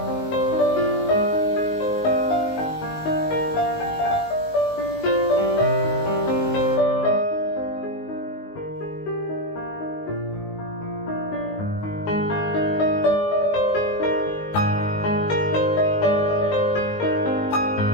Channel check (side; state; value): right; late; 19 ms